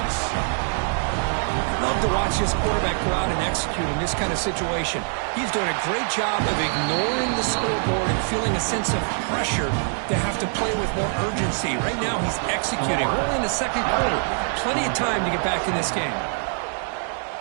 Love to watch this quarterback go out and execute in this kind of situation. He's doing a great job of ignoring the scoreboard and feeling a sense of pressure to have to play with more urgency. Right now, he's executing. We're in the 2nd quarter. Plenty of time to get back in this game.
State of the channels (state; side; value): silent; left; 56 dB below the other